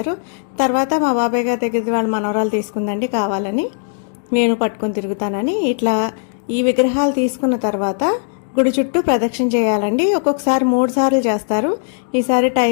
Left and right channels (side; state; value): right; silent; digital silence